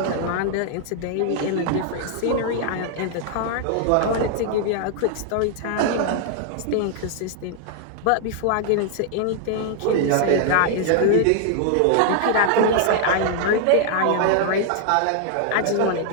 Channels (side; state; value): both; different; correlation 0.00